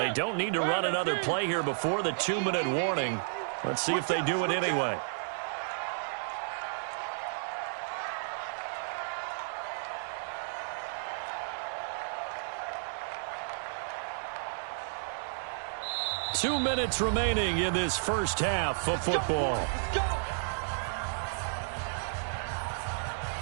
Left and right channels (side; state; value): left; silent; digital silence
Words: don't need to run another play here before the 2-minute warning. Let's see if they do it anyway. Two minutes remaining in this first half of football. Let's go.